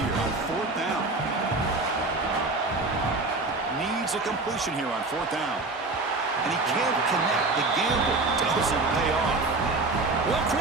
on 4th down. Needs a completion here on 4th down. And he can't connect. The gamble doesn't pay off. Well,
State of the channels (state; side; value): quieter; left; 3.3 dB